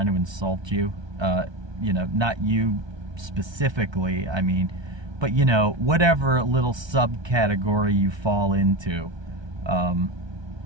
to insult you, not you specifically, I mean, but whatever little subcategory you fall into,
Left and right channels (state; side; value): late; left; 1.2 ms